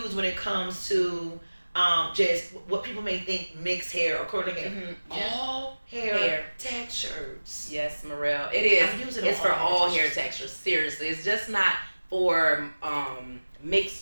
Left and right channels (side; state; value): both; inverted; correlation -1.00